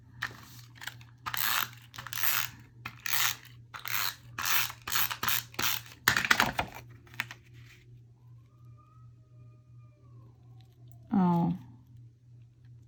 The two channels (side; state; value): both; identical; correlation 1.00